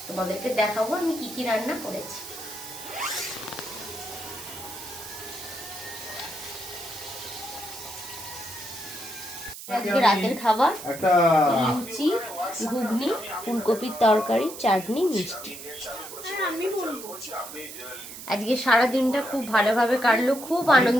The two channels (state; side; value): noise; right; hiss, 12 dB below the sound